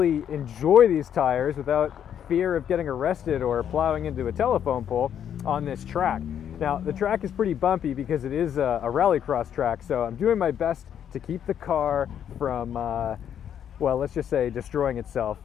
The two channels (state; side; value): quieter; right; 9.3 dB